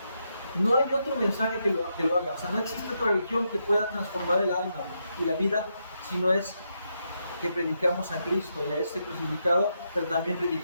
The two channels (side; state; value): both; inverted; correlation -0.82